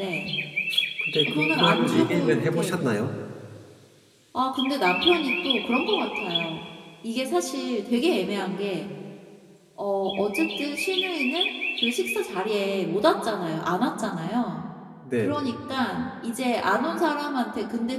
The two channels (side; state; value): both; identical; correlation 1.00